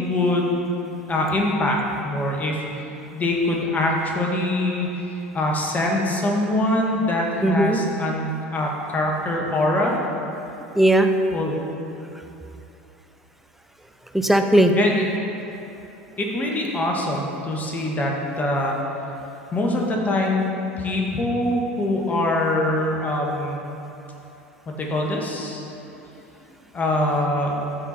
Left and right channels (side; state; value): both; normal; correlation 0.54